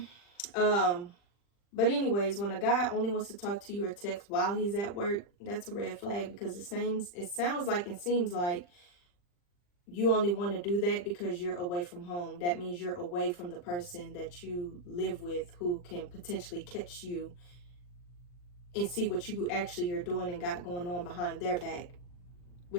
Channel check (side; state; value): right; late; 40 ms